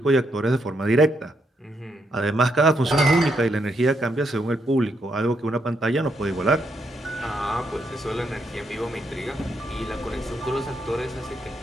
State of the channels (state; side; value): normal; both; correlation 0.78